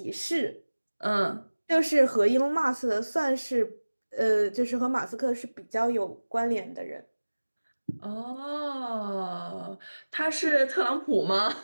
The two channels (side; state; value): both; inverted; correlation -1.00